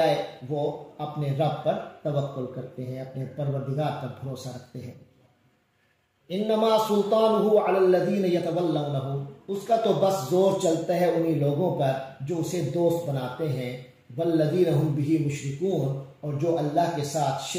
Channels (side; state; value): both; identical; correlation 1.00